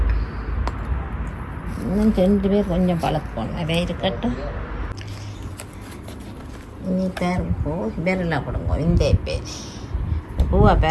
இன்னும் 2 பேர் கொஞ்சம் பழக்கம் நிறைய இருக்கட்டும். இனி பேருங்கோ பேரெல்லாம் கொடுங்க. இந்த பேர் பூவா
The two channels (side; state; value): both; identical; correlation 1.00